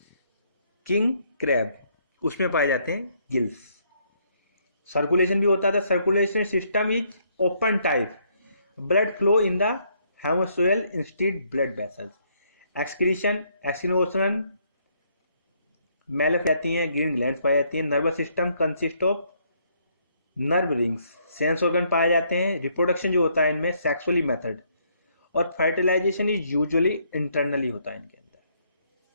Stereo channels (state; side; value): inverted; both; correlation -0.70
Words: क्रैब उसमें पाए जाते हैं गिल्स। सर्कुलेशन भी होता था, circulation system is open type, blood flow in the haemocoel instead blood vessels. Excretion मेल जाती हैं, ग्रीन ग्लैंड्स पाई जाती हैं। Nervous system consist of nerve rings, sense organ पाए जाते हैं। रिप्रोडक्शन जो होता है इनमें सेक्सुअली मेथड, और फर्टिलाइजेशन इज यूजुअली इंटरनली होता है इनके अंदर।